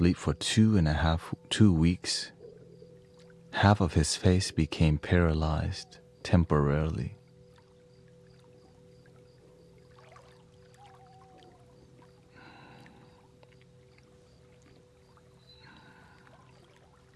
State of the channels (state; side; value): identical; both; correlation 1.00